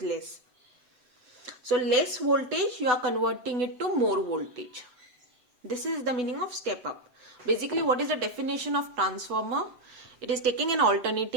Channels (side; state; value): left; late; 7.9 ms